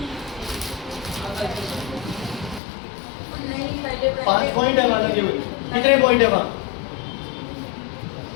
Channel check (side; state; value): right; drops out; at 2.6 s